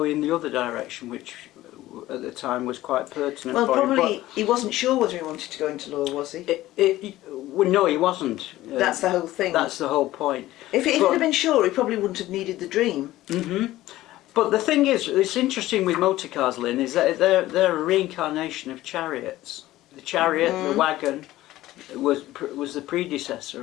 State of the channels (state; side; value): quieter; right; 15.9 dB